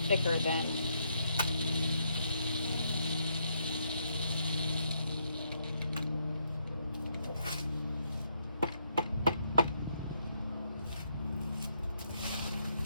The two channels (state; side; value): inverted; both; correlation -0.75